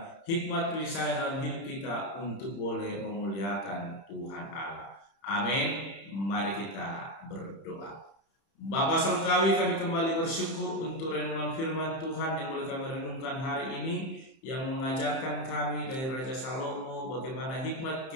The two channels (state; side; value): late; right; 30 ms